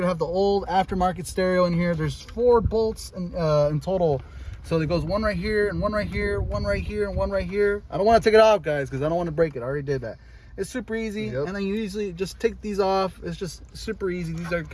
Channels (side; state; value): both; identical; correlation 1.00